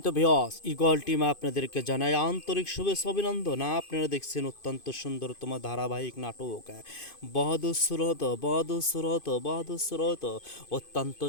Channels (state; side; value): late; right; 2.5 ms